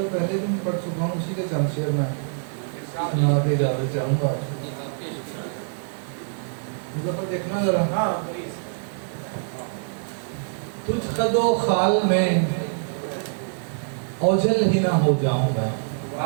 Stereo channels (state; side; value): silent; left; digital silence